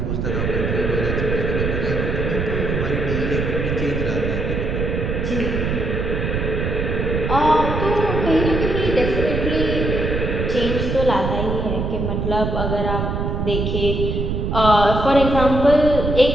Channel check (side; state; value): right; noise; rumble, 1 dB below the sound